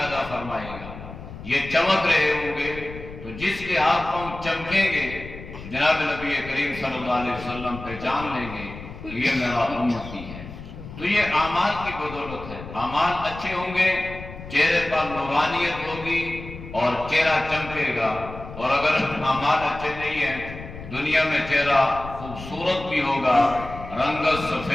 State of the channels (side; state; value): left; noise; rumble, 13 dB below the sound